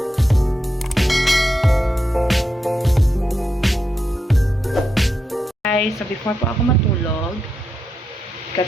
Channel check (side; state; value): both; normal; correlation 0.85